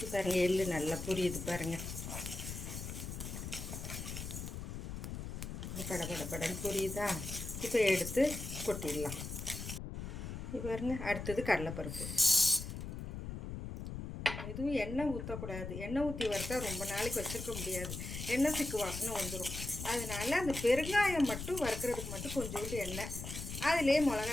பாருங்கள், எள்ளு நல்லா புரியுது பாருங்கள். படன்னு புரியுதா? இப்போ எடுத்து கொட்டிடலாம். இப்போ பாருங்க, அடுத்தது கடலைப்பருப்பு. எதுவும் எண்ணெய் ஊற்றக்கூடாது. எண்ணெய் ஊற்றி வறுத்தா ரொம்ப நாளைக்கு வச்சுருக்க முடியாது. எண்ணெய் சிக்கு வாசனை வந்துடும். அதனால் அந்த பெருங்காயம் மட்டும் வறுக்கிறதுக்கு மட்டும் கொஞ்சோண்டு எண்ணெய், அதிலே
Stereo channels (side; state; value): left; noise; rumble, 7 dB below the sound